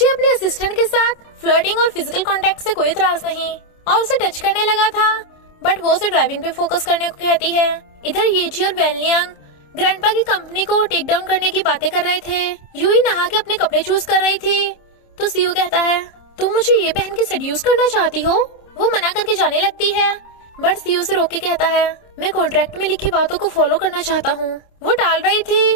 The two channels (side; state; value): right; late; 27 ms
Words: अपने असिस्टेंट के साथ फ्लर्टिंग और फिजिकल कांटेक्ट से कोई इतराज नहीं, और उसे टच करने लगा था, बट वो उसे ड्राइविंग पे फोकस करने को कहती है। इधर येजी और वेनलियांग ग्रैंडपा की कंपनी को टेक डाउन करने की बातें कर रहे थे। यूई नहा के अपने कपड़े चूज कर रही थी। तो सीईओ कहता है, तुम मुझे ये पहन के सेड्यूस करना चाहती हो? वो मना करके जाने लगती है, बट सीईओ से रोक के कहता है, मैं कॉन्ट्रैक्ट में लिखी बातों को फॉलो करना चाहता हूँ। वो टाल रही